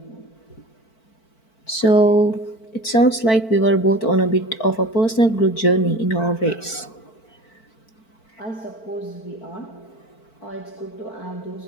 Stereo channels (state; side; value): late; right; 4.5 ms